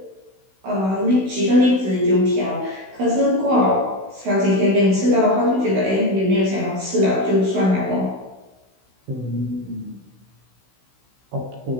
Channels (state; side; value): late; left; 16 ms